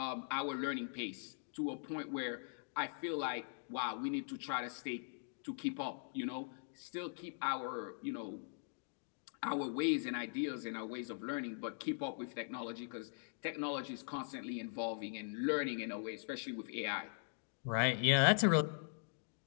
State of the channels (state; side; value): silent; right; digital silence